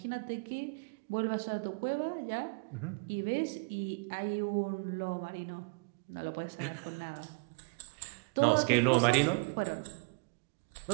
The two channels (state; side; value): quieter; left; 32.7 dB